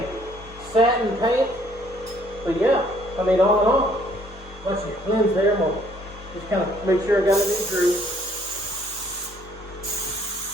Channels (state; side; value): normal; both; correlation 0.63